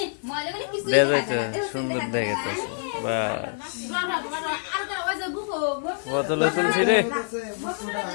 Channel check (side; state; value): right; silent; digital silence